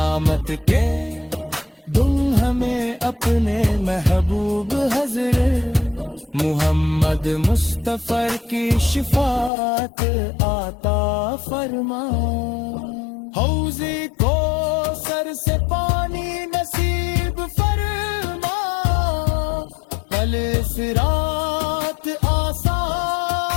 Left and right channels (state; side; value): drops out; right; at 9.5 s